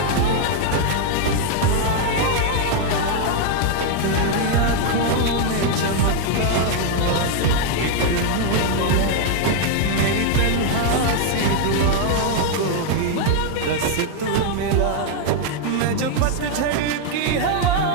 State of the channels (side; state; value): both; different; correlation 0.00